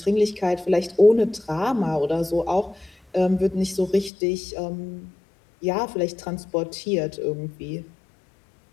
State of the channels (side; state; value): right; drops out; at 4.1 s